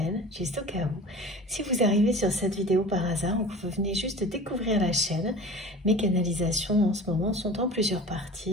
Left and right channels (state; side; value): normal; both; correlation 0.38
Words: juste au cas où, si vous arrivez sur cette vidéo par hasard ou que vous venez juste de découvrir la chaîne, mes canalisations en ce moment sont en plusieurs